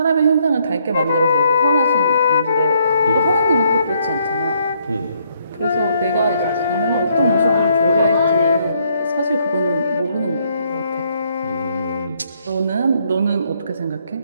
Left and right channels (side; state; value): both; inverted; correlation -0.70